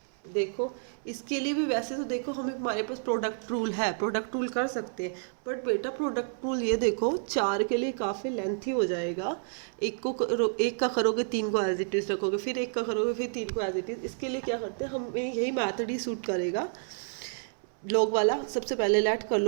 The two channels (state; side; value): silent; left; 58 dB below the other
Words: देखो इसके लिए भी वैसे तो देखो हमें हमारे पास प्रोडक्ट रूल है, प्रोडक्ट रूल कर सकते हैं, बट बेटा प्रोडक्ट रूल ये देखो 4 के लिए काफ़ी लेंथी हो जाएगा। एक का करोगे 3 को एज इट इज़ रखोगे, फिर एक का करोगे फिर 3 को एज इट इज़। इसके लिए क्या करते हैं, हमें यही मैथड ही सूट करेगा लॉग वाला। सबसे पहले लेट कर